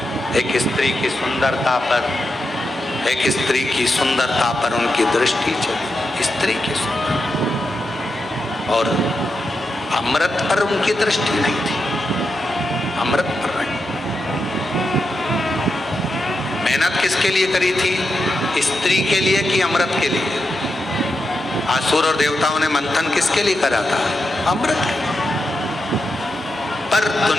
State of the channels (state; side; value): normal; both; correlation 0.87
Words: एक स्त्री की सुंदरता पर, एक स्त्री की सुंदरता पर उनकी दृष्टि चली, स्त्री की सुंदरता। और अमृत पर उनकी दृष्टि नहीं थी, अमृत पर नहीं। मेहनत किसके लिए करी थी? स्त्री के लिए कि अमृत के लिए? असुर और देवताओं ने मंथन किसके लिए करा था? अमृत के। पर